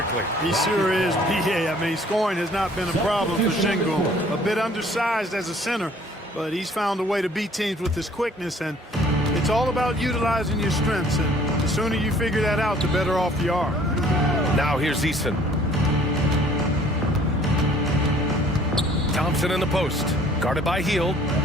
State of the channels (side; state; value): both; normal; correlation 0.56